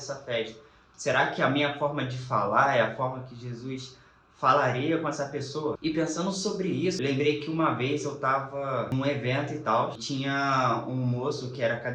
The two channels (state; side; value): identical; both; correlation 1.00